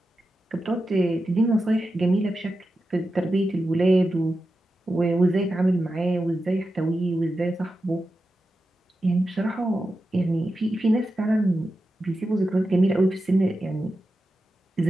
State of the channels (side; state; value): both; normal; correlation 0.91